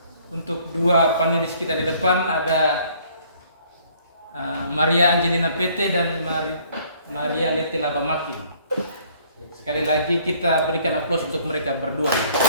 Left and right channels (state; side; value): inverted; both; correlation -0.60